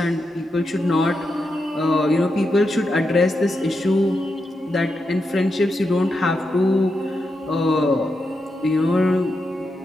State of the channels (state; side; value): normal; both; correlation 0.86